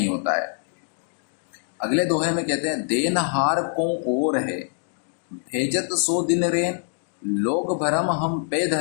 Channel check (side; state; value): right; silent; digital silence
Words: होता है। अगले दोहे में कहते हैं, देनहार को और है भेजत सो दिन रेन, लोग भरम हम पे